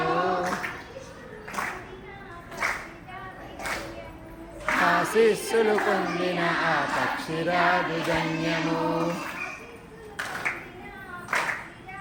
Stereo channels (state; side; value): identical; both; correlation 1.00